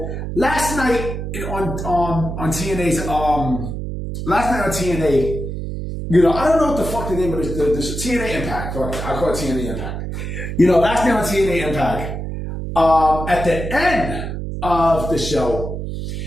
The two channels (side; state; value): right; noise; hum, 5 dB below the sound